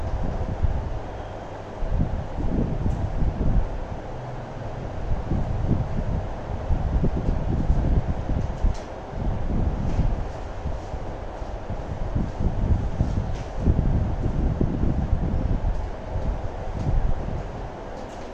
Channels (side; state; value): both; identical; correlation 1.00